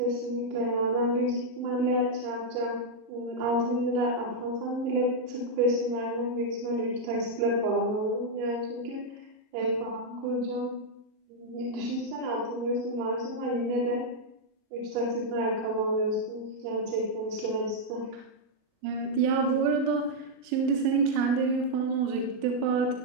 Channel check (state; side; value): late; left; 39 ms